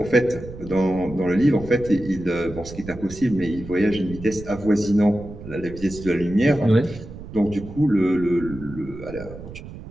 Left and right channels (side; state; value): right; noise; rumble, 13 dB below the sound